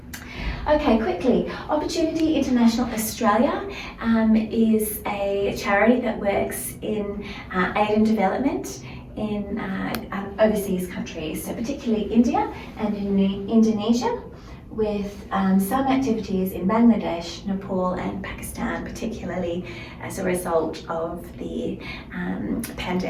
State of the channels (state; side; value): identical; both; correlation 1.00